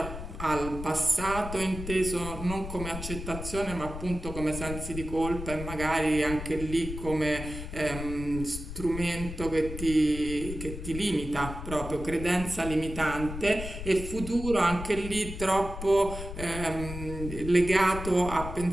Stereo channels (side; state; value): left; noise; rumble, 8 dB below the sound